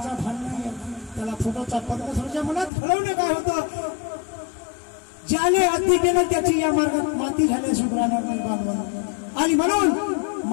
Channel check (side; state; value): right; drops out; at 2.7 s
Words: भान नाही त्याला. फोटोचा परमेश्वराच्या मनात घडवणे काय होतं, ज्याने अति केलं त्याची या मार्गात माती झाल्या सुधारणार नाही बांधवांना. आणि म्हणून